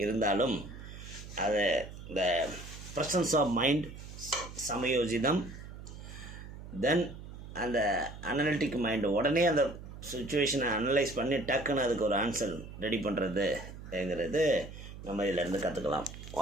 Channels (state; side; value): noise; right; hum, 13 dB below the sound